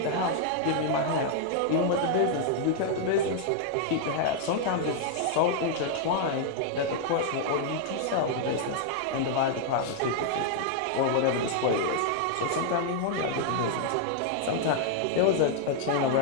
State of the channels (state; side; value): different; both; correlation 0.00